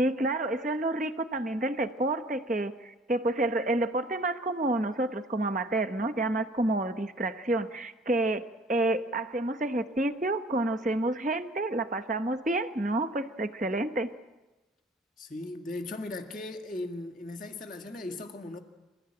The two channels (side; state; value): both; normal; correlation 0.52